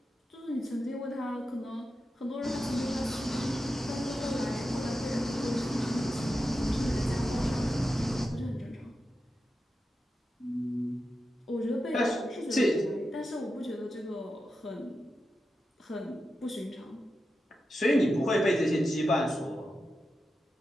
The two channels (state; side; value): normal; both; correlation 0.90